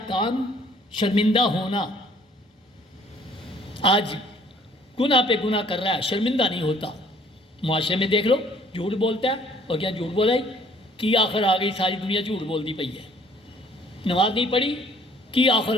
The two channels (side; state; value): both; normal; correlation 0.58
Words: کام شرمندہ ہونا۔ آج گناہ پہ گناہ کر رہا ہے، شرمندہ نہیں ہوتا۔ معاشرے میں دیکھ لو، جھوٹ بولتا ہے اور کیا جھوٹ بولا کی آخر آ گئی، ساری دنیا جھوٹ بولتی پئی ہے۔ نماز نہیں پڑھی کی آخر